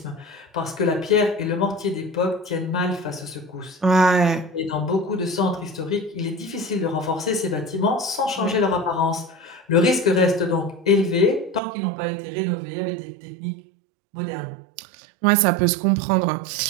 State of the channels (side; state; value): left; drops out; at 11.6 s